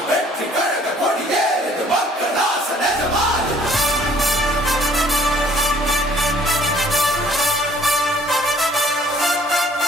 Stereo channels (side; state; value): both; normal; correlation 0.57